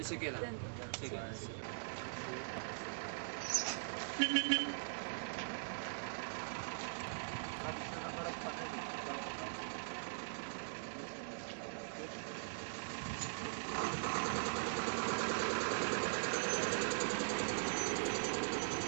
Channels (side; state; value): left; silent; digital silence